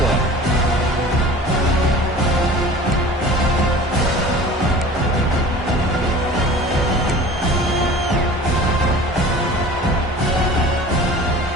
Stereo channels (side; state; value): both; normal; correlation 0.42